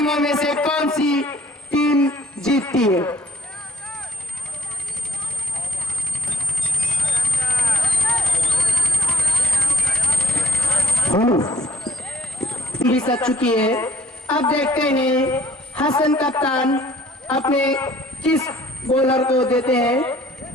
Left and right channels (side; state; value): both; normal; correlation 0.58